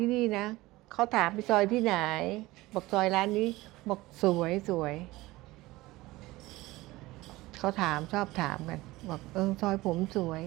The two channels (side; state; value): left; quieter; 19.2 dB